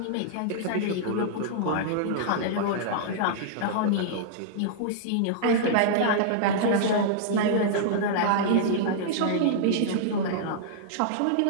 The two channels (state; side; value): different; both; correlation -0.02